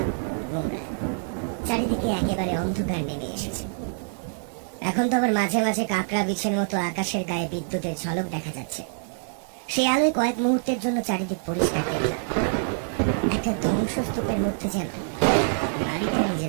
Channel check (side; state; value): left; silent; digital silence